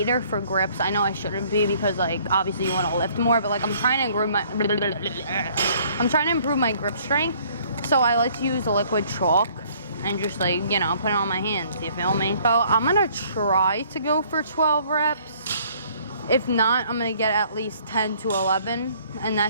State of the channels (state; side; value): inverted; both; correlation -0.60